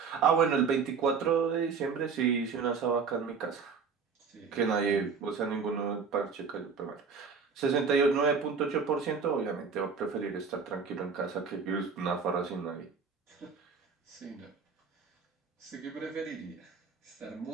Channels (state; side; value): quieter; left; 5.6 dB